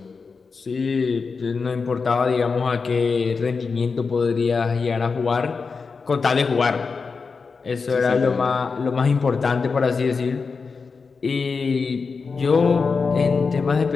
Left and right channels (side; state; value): right; quieter; 4.9 dB